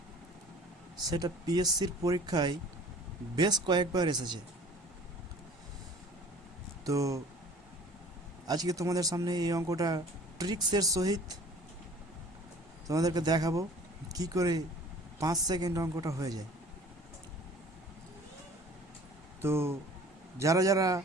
সেটা পিএসসির পরীক্ষায় বেশ কয়েকবার এসেছে। তো আজকে তোমাদের সামনে এই অঙ্কটা ট্রিক্সের সহিত তোমাদেরকে দেখাবো কি করে 5 সেকেন্ড অঙ্কটা হয়ে যায়। তো যারা যারা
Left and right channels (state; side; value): normal; both; correlation 0.48